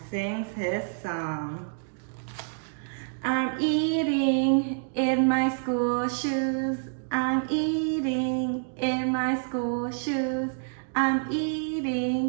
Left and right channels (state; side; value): silent; left; digital silence